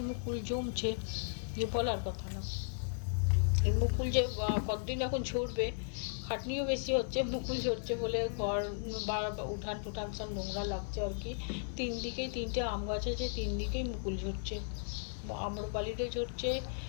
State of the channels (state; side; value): silent; right; digital silence